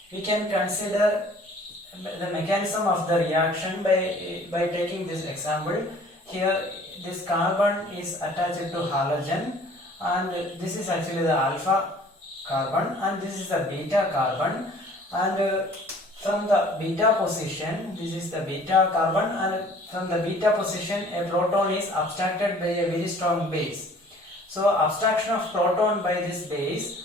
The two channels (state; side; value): normal; both; correlation 0.52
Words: We can consider the mechanism of the reaction by taking this example. Here this carbon is attached to halogen, and this is actually the alpha carbon, and this is the beta carbon, and from the beta position, this is the beta carbon, and from the beta position a proton is abstracted by a very strong base. So abstraction of proton by this